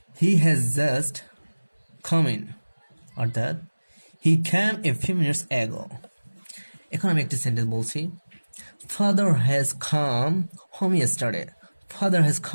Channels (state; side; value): inverted; both; correlation -1.00